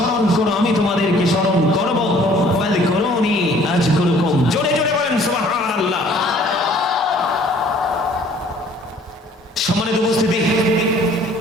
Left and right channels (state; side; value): normal; both; correlation 0.55